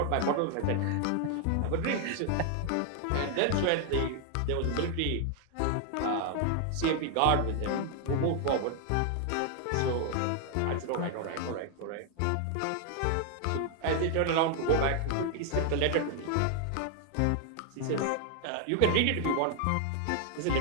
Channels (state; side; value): different; both; correlation 0.00